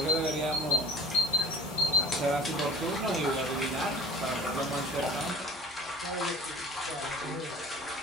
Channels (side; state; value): both; normal; correlation 0.46